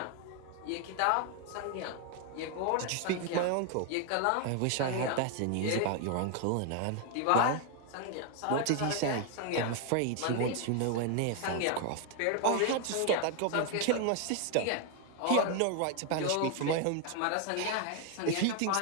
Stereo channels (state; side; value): different; both; correlation 0.00